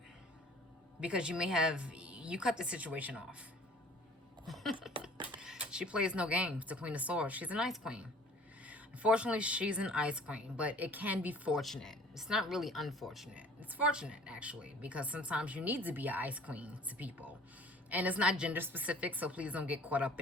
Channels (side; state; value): both; normal; correlation 0.50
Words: Because you cut the situation off. She plays no games, the Queen of Swords. She's an ice queen. Unfortunately, she's an ice queen, but it can be fortunate. It's not really unfortunate. It's fortunate, actually, because sometimes you need to be an ice queen to people. And it's not gender specific, so please don't get caught up